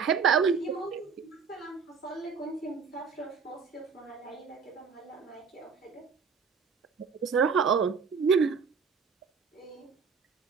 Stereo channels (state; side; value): quieter; left; 5.9 dB